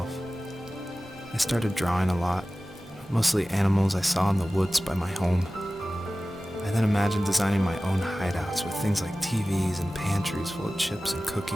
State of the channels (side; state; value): both; normal; correlation 0.96